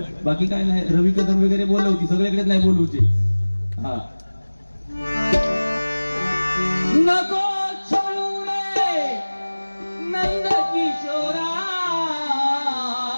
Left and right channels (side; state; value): both; inverted; correlation -1.00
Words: बाकी काय नाही. रवी कदम वगैरे बोलवती, सगळीकडेच नाही बोलवते. हा नको छोडू रे नंद किशोरा,